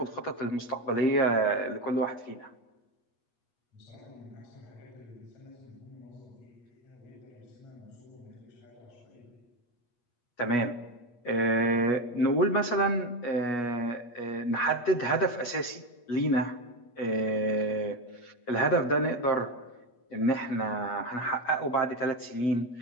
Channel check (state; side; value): late; right; 8.3 ms